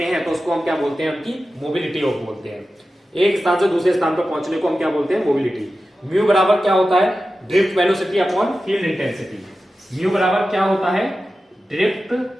हैं तो उसको हम क्या बोलते हैं, उनकी मोबिलिटी ऑफ बोलते हैं। एक स्थान से दूसरे स्थान पर पहुंचने को हम क्या बोलते हैं, मोबिलिटी। म्यू बराबर क्या होता है, drift velocity upon field intensity. Mu बराबर क्या होता है, drift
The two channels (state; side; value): normal; both; correlation 0.93